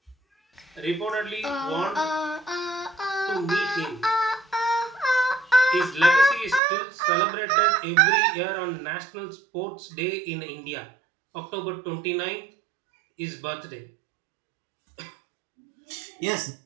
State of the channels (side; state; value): left; drops out; at 6.6 s